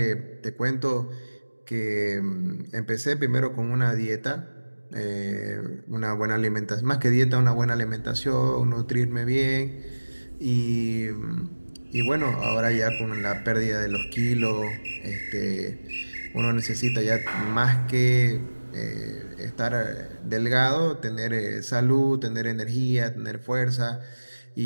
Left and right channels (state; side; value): inverted; both; correlation -1.00